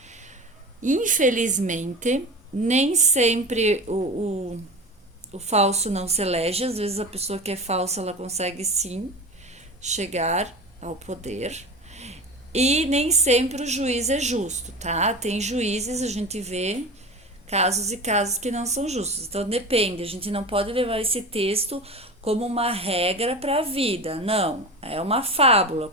infelizmente, nem sempre o falso não se elege. Às vezes a pessoa que é falsa, ela consegue sim chegar ao poder. E nem sempre o juiz é justo, tá? Tem juízes, a gente vê casos e casos que não são justos. Então depende, a gente não pode levar esse texto como uma regra para a vida. Não, é uma fábula,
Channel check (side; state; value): both; normal; correlation 0.30